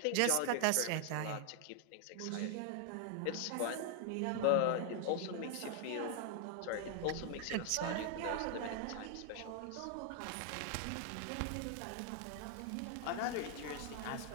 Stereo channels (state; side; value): different; both; correlation 0.00